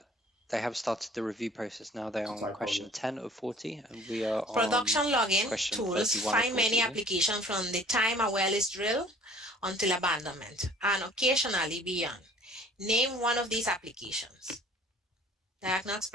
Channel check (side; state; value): both; normal; correlation 0.51